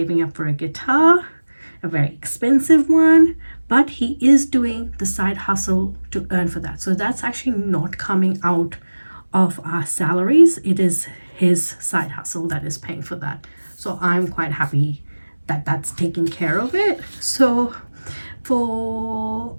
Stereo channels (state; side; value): inverted; both; correlation -1.00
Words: up for a guitar, a very expensive one, but he is doing the side hustle to earn for that. So that's actually not coming out of our salaries. It is his side hustle that is paying for that. So I'm quite happy that that's taking care of it. So for